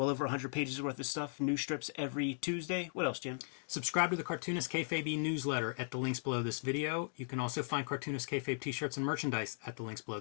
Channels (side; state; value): right; silent; digital silence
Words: over 100 pages worth of stuff. New strips every Tuesday. What else, Jim? Subscribe to the Cartoonist Kayfabe newsletter at the links below this video. You can also find Cartoonist Kayfabe t-shirts and merchandise at the links below